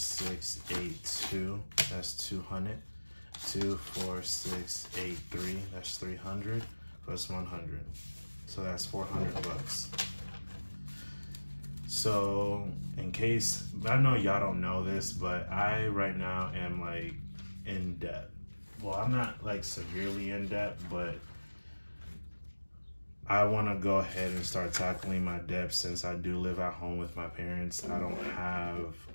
8, 2. That's 200. 2, 4, 6, 8, 3. That's 300 plus 100. So that's $400. So in case, I know y'all don't know this, but I right now am like in debt. Well, I'm not like severely in debt, but I want to go ahead and start tackling my debt since I do live at home with my parents. I don't have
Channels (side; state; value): both; inverted; correlation -1.00